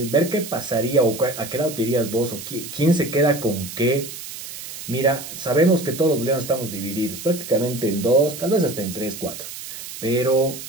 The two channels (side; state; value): right; noise; hiss, 11 dB below the sound